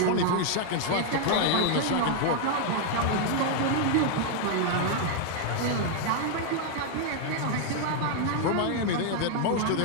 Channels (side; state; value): both; different; correlation 0.00